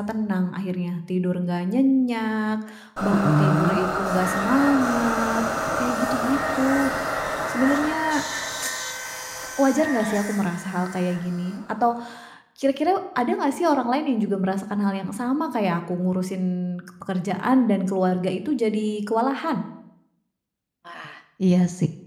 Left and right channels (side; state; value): both; identical; correlation 1.00